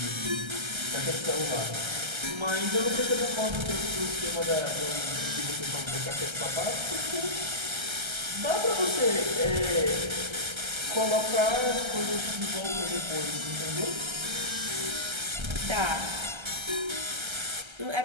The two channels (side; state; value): left; late; 1.3 ms